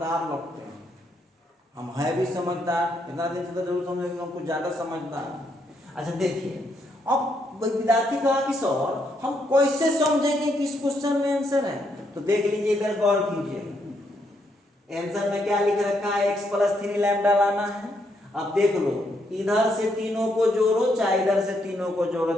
लगते हैं। हम है भी समझदार, इतना दिन से तो जरूर समझेंगे हम कुछ ज्यादा समझदार। अच्छा देखिए, अब विद्यार्थी कहा कि सर हम कैसे समझेंगे कि इस क्वेश्चन में आंसर है, तो देख लीजिए इधर गौर कीजिए, आंसर में क्या लिख रखा है, x प्लस 3 लैम्डा लाना है। अब देख लो, इधर से तीनों को जोड़ो चाहे इधर से तीनों को जोड़ो,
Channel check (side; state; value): both; normal; correlation 0.76